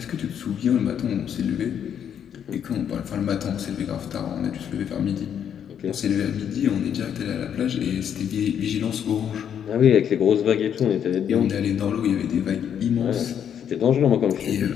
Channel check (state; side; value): quieter; right; 8.8 dB